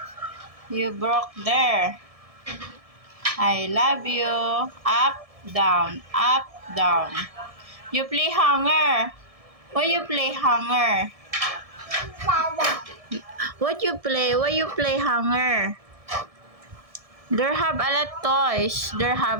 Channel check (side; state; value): left; late; 1.7 ms